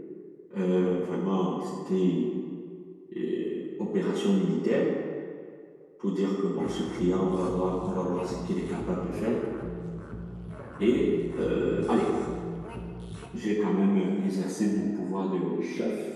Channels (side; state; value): both; identical; correlation 1.00